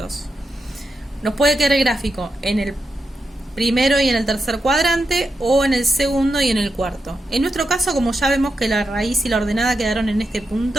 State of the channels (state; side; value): normal; both; correlation 0.87